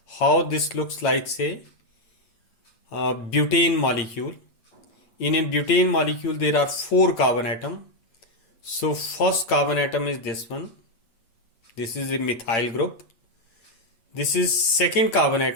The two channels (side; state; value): right; late; 8.8 ms